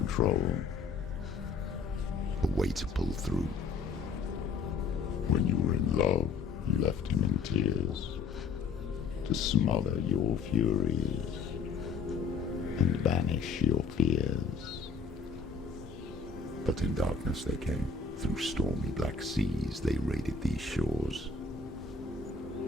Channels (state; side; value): quieter; right; 4.9 dB